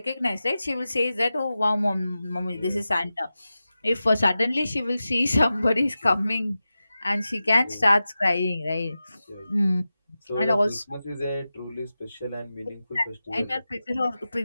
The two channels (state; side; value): inverted; both; correlation -0.93